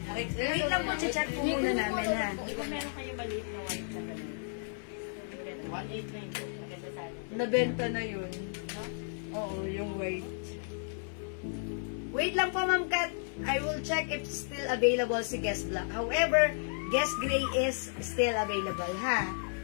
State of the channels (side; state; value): right; silent; digital silence